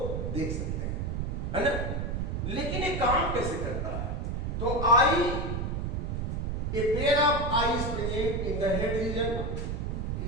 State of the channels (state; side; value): noise; right; rumble, 1 dB below the sound